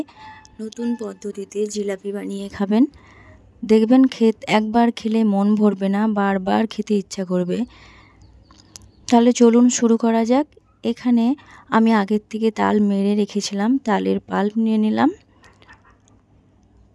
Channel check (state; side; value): identical; both; correlation 1.00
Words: নতুন পদ্ধতিতে জিলাপি বানিয়ে খাবেন। দেখবেন একবার খেলে মন ভরবে না, বারবার খেতে ইচ্ছা করবে। তাহলে চলুন শুরু করা যাক। এখানে আমি আগের থেকে তাল মেরে রেখেছিলাম। তালের পাল্প নিয়ে নিলাম